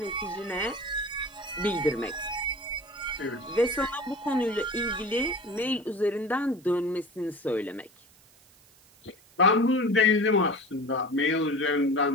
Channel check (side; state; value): right; noise; hiss, 28 dB below the sound